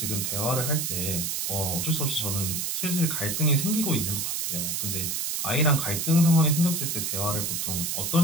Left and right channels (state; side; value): noise; right; hiss, 1 dB below the sound